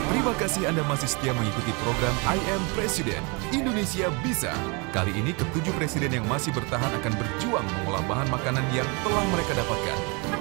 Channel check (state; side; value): quieter; left; 31.1 dB